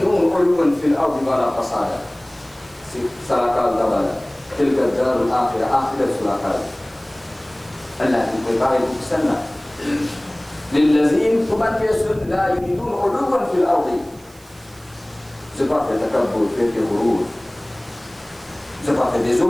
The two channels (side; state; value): right; noise; hiss, 25 dB below the sound